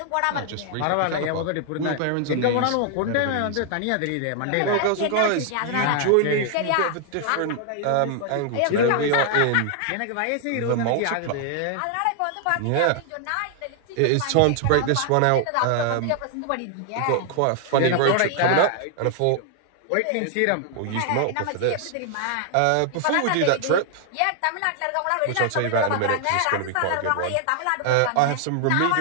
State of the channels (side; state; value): both; different; correlation 0.00